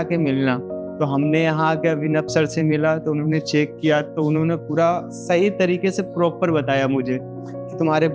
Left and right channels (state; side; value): identical; both; correlation 1.00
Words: मिलना। तो हमने यहाँ आके अभिनव सर से मिला, तो उन्होंने चेक किया, तो उन्होंने पूरा सही तरीके से प्रॉपर बताया मुझे कि तुम्हारे